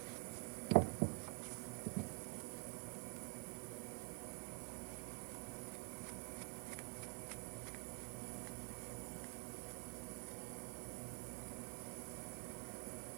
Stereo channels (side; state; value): left; quieter; 37.0 dB